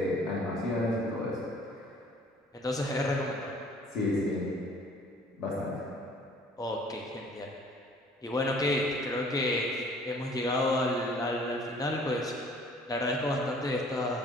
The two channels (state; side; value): normal; both; correlation 0.54